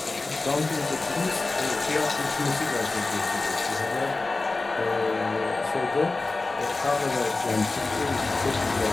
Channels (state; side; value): quieter; right; 3.4 dB